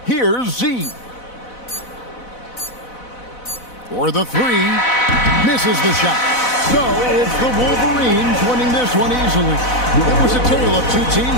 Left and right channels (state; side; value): late; right; 4.0 ms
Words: Here's Z. For the three. Misses the shot. So it's the Wolverines winning this one easily. It was a tale of two